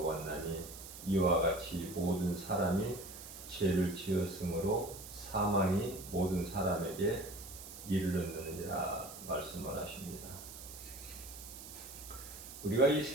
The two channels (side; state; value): right; noise; hiss, 13 dB below the sound